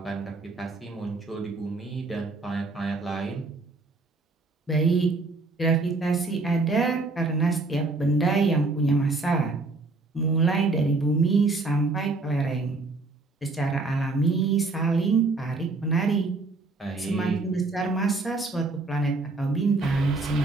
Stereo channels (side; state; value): left; quieter; 3.5 dB